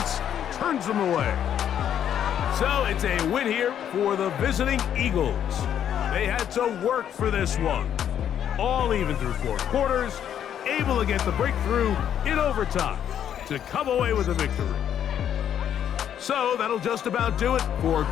turns them away. So it's a win here for the visiting Eagles. They had to work for this one. All even through 4 quarters, able to get the breakthrough in overtime to come away with a victory. So that'll just about do it for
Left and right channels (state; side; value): quieter; right; 9.6 dB